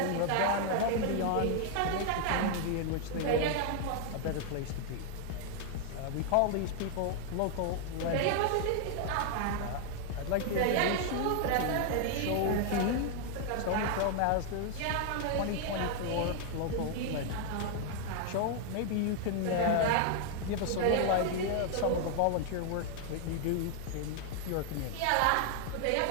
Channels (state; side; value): different; both; correlation 0.00